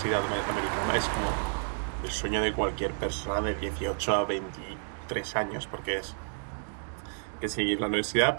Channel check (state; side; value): silent; left; digital silence